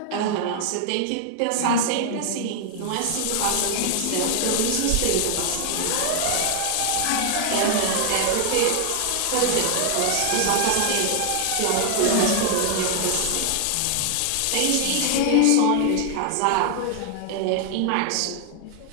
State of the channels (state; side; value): different; both; correlation 0.00